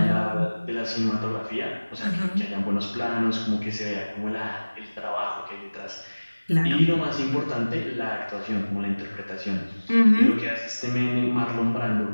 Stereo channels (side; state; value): both; inverted; correlation -1.00